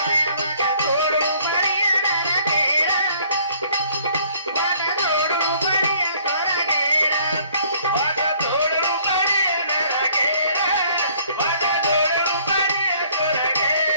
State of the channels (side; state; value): both; inverted; correlation -0.59